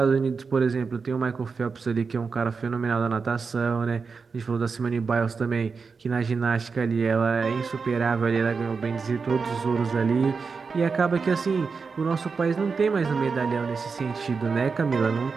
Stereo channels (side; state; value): left; quieter; 5.0 dB